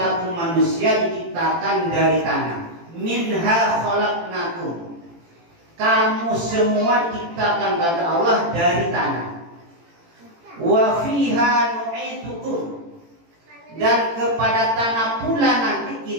manusia diciptakan dari tanah. Minha khalaqnakum. Kamu semua diciptakan kata Allah dari tanah. Wa fiha nu'idukum. Dan kepada tanah pula nanti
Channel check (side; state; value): left; late; 18 ms